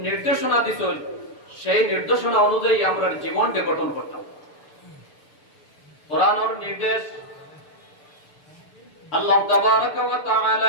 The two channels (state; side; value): late; right; 6.8 ms